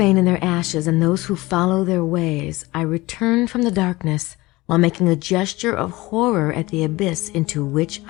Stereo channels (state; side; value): quieter; right; 20.6 dB